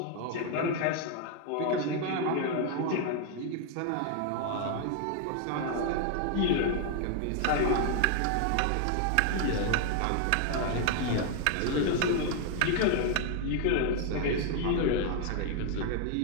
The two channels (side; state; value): both; different; correlation 0.00